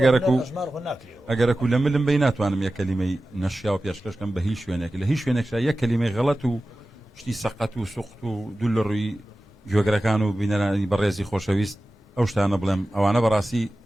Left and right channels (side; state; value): both; normal; correlation 0.95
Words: ژمار خۆ ناکرێەوە ئەگەرەکو لە ملم بی ناتوانم یەک کەلیمەی نەشیا و پێشکەشکەم بە هیچ شوێنێک لە هیچ شوێنێکشا یەک کەلیمەی غەڵەت و شتی سەقەت و سوخت و دوو لە ڕووی گوێگرەکان و بینەرانی بەڕێزی خۆشەویست ئەو شتانە بڵێم ئەوانە بەڕاستی